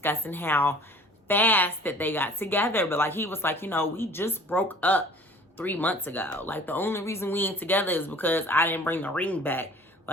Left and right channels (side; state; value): both; normal; correlation 0.48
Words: how fast that they got together. But like, he was like, you know, we just broke up 3 months ago. Like, the only reason we ain't together is because I didn't bring the ring back.